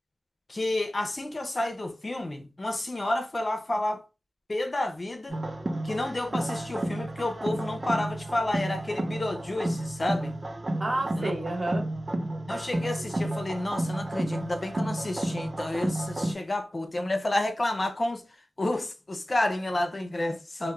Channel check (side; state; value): both; normal; correlation 0.96